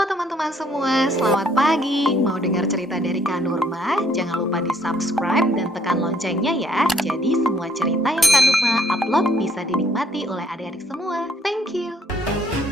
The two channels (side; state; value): both; normal; correlation 0.66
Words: teman-teman semua, selamat pagi. Mau dengar cerita dari Kak Nurma? Jangan lupa di-subscribe dan tekan loncengnya ya. Jadi semua cerita yang Kak Nurma upload bisa dinikmati oleh adik-adik semua. Thank you.